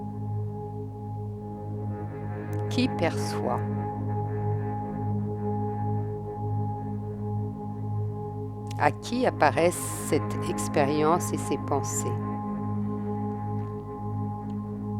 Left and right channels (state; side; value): identical; both; correlation 1.00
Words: Qui perçoit? À qui apparaissent cette expérience et ces pensées?